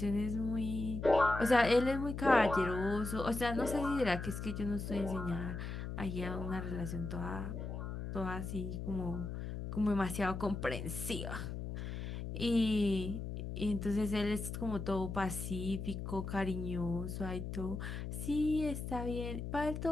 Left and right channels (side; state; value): left; noise; hum, 5 dB below the sound